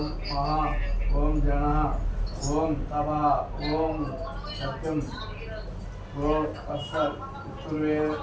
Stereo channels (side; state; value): both; identical; correlation 1.00